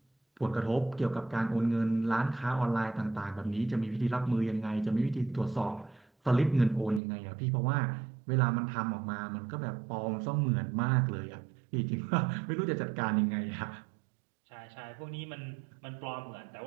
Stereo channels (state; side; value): drops out; left; at 7.0 s